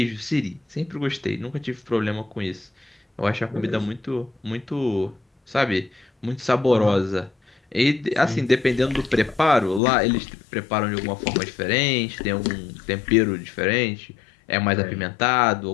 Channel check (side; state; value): right; drops out; at 9.8 s